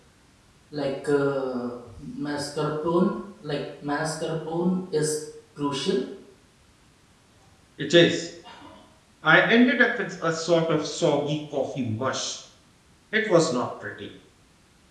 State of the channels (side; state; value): both; identical; correlation 1.00